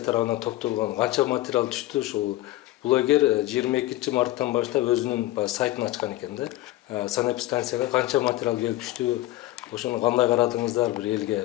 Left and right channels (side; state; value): right; quieter; 16.5 dB